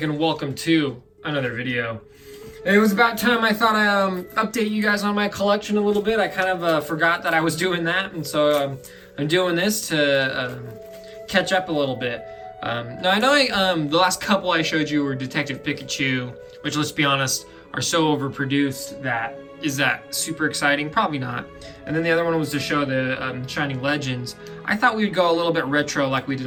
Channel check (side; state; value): both; identical; correlation 1.00